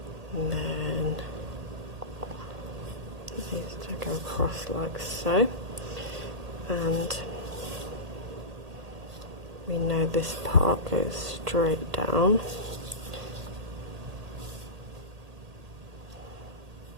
And then it needs to go across like so. And we know this part goes straight down.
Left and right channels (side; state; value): left; late; 1.8 ms